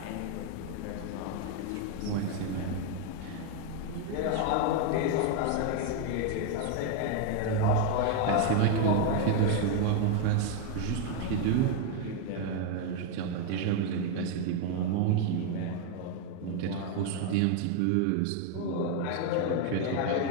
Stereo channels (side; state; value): both; different; correlation 0.01